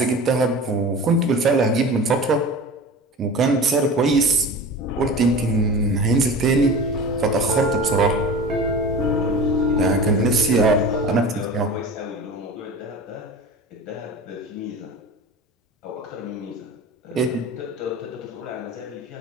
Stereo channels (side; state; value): both; normal; correlation 0.34